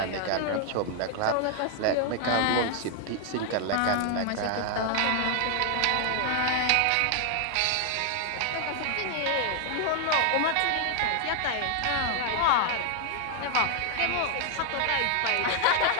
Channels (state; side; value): different; both; correlation 0.00